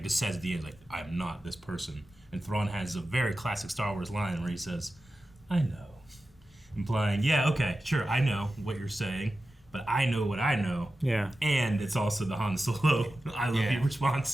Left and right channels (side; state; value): both; normal; correlation 0.93